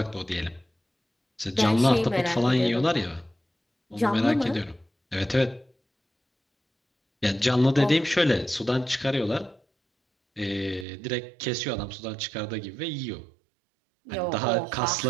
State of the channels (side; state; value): left; drops out; at 10.9 s